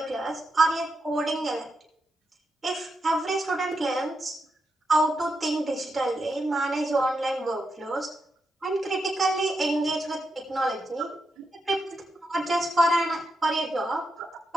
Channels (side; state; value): both; normal; correlation 0.84